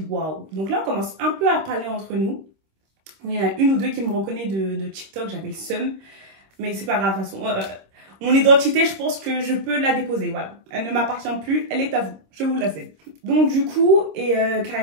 waouh. Donc là, on commence un peu à parler entre nous. Il y en a une ou deux qui me reconnaissent de TikTok, j'avais le seum, mais c'est pas grave, de toute façon. Mon identité, je pense que je peux la déposer, voilà. Elle ne m'appartient plus, elle est à vous, je vous la cède. Donc du coup, et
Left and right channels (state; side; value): late; left; 26 ms